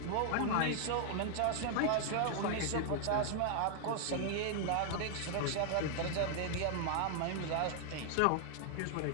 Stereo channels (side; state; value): both; different; correlation 0.00